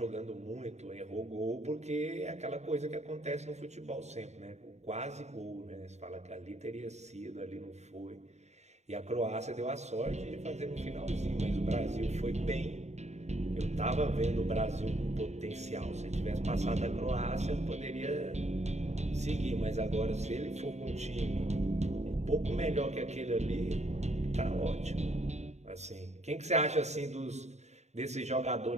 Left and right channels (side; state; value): left; late; 0.32 ms